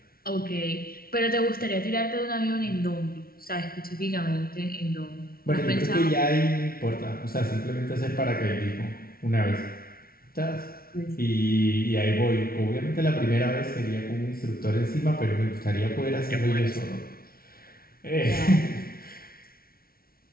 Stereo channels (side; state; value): right; late; 0.43 ms